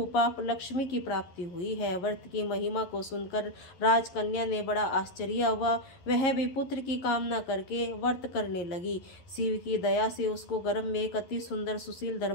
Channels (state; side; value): late; right; 11 ms